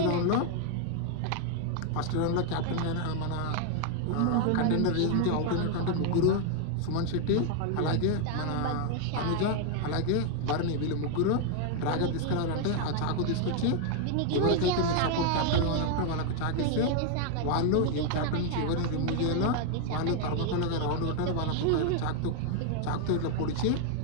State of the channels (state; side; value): different; both; correlation 0.00